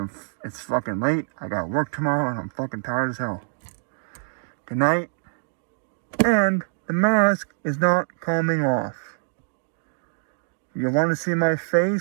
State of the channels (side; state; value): left; silent; digital silence